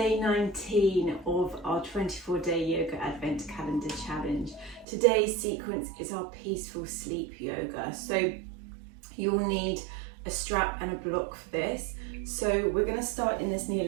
19 of our 24-day yoga advent calendar challenge. Today's sequence is our peaceful sleep yoga. So you'll need a strap and a block for this. So we're going to start in this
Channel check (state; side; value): drops out; left; at 4.9 s